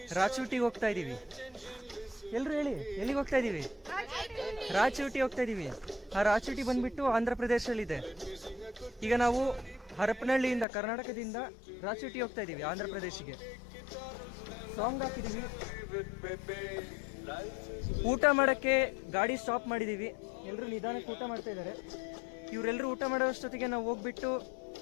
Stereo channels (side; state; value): right; drops out; at 10.7 s